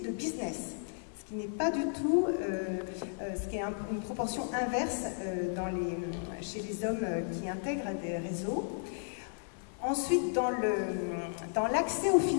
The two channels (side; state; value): right; silent; digital silence